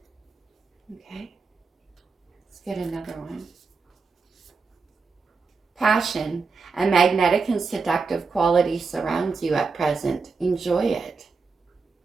Okay. Let's get another one. Passion. A magnetic and seductive quality surrounds you at present. Enjoy it.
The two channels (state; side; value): quieter; left; 4.7 dB